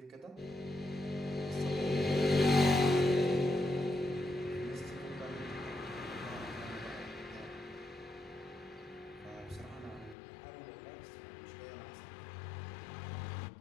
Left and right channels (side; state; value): right; drops out; at 10.2 s